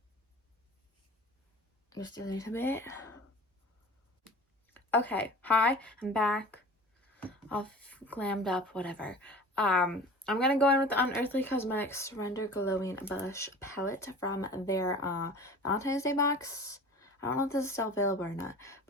Just a little bit. Okay, hi, I'm back. All glammed up, whatever. I'm gonna go in with the Unearthly Cosmetics Surrender Glowing Blush Palette from their Valentine's Day box. I don't know if this is still available or not,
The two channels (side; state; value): both; normal; correlation 0.40